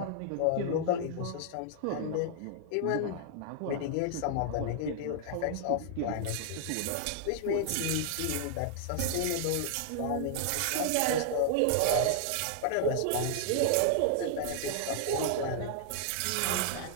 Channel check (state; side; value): different; both; correlation -0.01